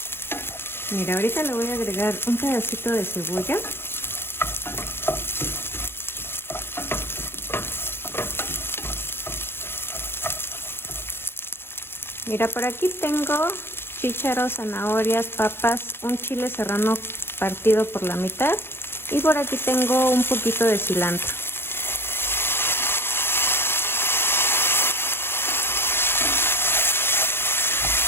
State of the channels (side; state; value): right; late; 0.11 ms